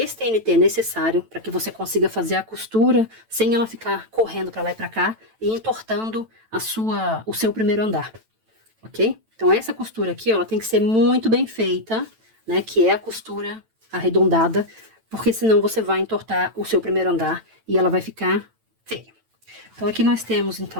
TNT é necessário para que você consiga fazer a costura sem ela ficar correndo para lá e para cá e entortando o seu primeiro andar, ok? Então, essa costura aqui, ela tem que ser muito bem feita, né? Que é a costura arredondada, porque senão você vai entortar o seu primeiro andar e ela vai ficar feia. Então, aqui nós temos,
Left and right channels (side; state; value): left; late; 9.0 ms